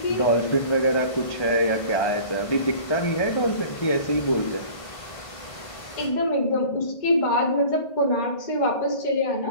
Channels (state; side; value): late; right; 1.5 ms